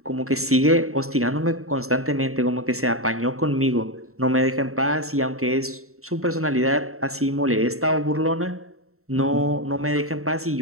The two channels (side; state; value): left; late; 0.63 ms